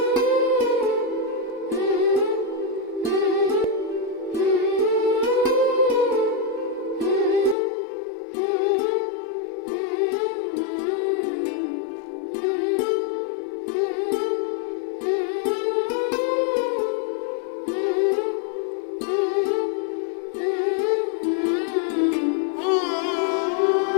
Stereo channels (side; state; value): right; drops out; at 7.6 s